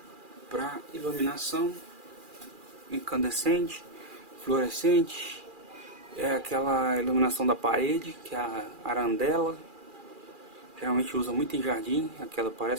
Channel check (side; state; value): left; late; 2.4 ms